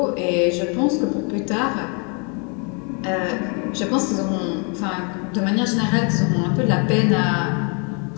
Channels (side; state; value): right; quieter; 36.3 dB